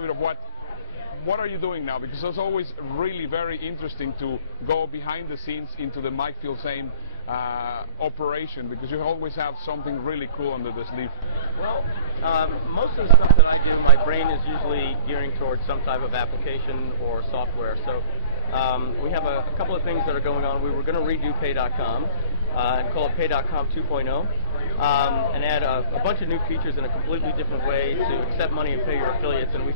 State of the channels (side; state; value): both; inverted; correlation -0.36